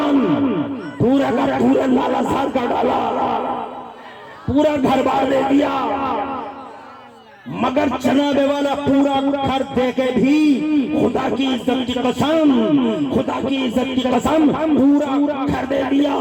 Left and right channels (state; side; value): identical; both; correlation 1.00